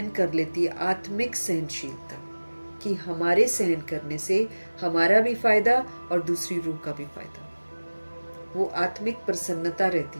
कर लेती है, आत्मिक सहनशीलता कि हमारे सहन करने से हमारा भी फायदा और दूसरी रूह का भी फायदा, वो आत्मिक प्रसन्नता रहती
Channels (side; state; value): both; inverted; correlation -1.00